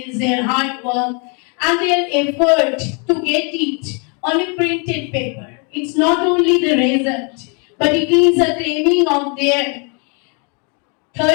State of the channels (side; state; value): right; quieter; 36.0 dB